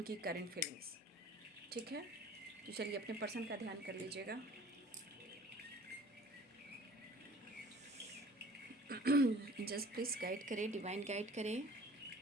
करेंट फीलिंग्स। ठीक है, तो चलिए अपने पर्सन का ध्यान कर लीजिएगा। जस्ट प्लीज़ गाइड करें, डिवाइन गाइड करें,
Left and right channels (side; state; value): both; normal; correlation 0.48